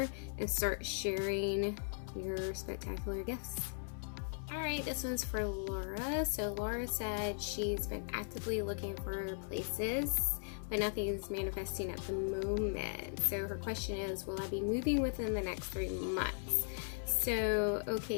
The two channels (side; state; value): right; silent; digital silence